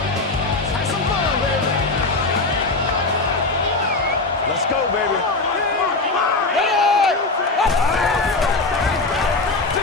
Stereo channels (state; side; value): quieter; right; 3.5 dB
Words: Let's go, baby.